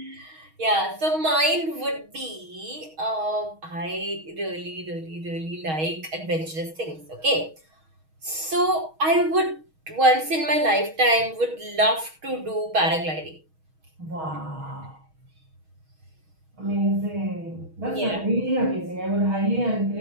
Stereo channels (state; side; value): late; left; 6.3 ms